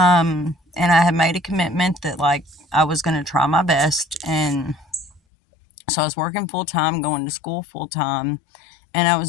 I had made a commitment that like I was going to try my best. And so I was working full time, going to school full time, and I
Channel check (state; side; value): drops out; right; at 5.2 s